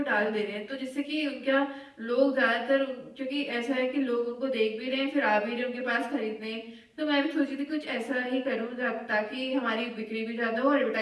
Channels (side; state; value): both; identical; correlation 1.00